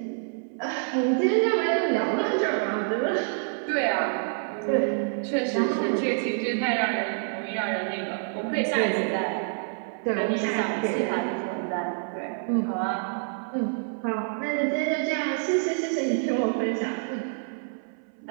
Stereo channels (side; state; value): left; silent; 60 dB below the other